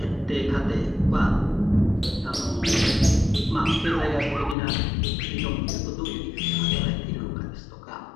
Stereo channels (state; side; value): drops out; right; at 4.5 s